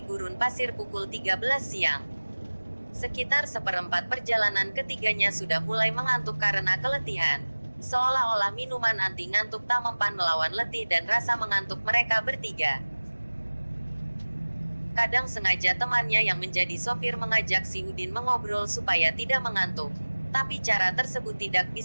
gurun pasir pukul 13 siang. Sekitar seperempat perjalanan ketiganya sudah mulai mengantuk karena keletihan. Seolah-olah minuman anti ngantuk tak mempan melawan letih dan rasa mengantuk mereka bertiga. Kadang sengaja temannya yang menjadi sopir mengajak si Udin mengobrol supaya tidak mengantuk. Tapi cara tersebut tidak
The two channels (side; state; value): both; inverted; correlation -1.00